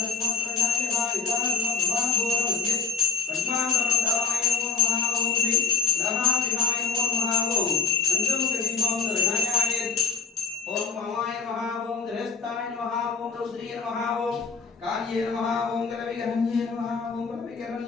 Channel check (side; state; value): right; quieter; 5.6 dB